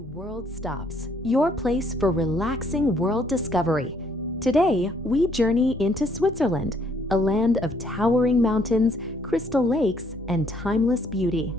World Stops, your place for relaxing world discovery. Today, we journey into Switzerland, a land of towering mountains, crystal lakes, and timeless beauty.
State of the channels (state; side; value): normal; both; correlation 0.66